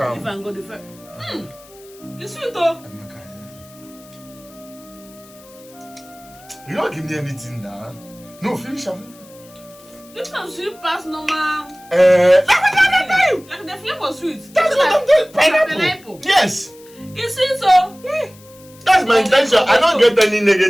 Leave am go the first. You sweet oh. You don't give me anything now. No, finish am. This one sweet past normal. Like the flavor sweet. That's what I'm doing. Pineapple. Yes. It's sweet so. That's my intention. I don't get any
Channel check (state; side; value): noise; left; hiss, 24 dB below the sound